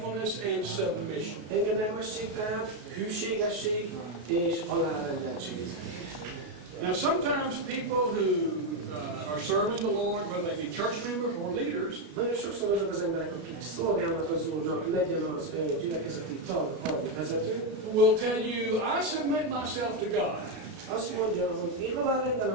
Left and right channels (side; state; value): left; late; 33 ms